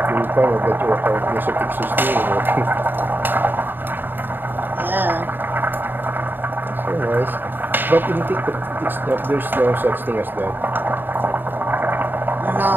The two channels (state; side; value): late; left; 0.093 ms